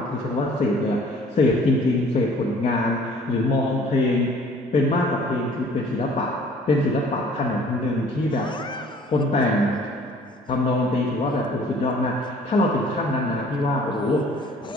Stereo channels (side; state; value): both; normal; correlation 0.53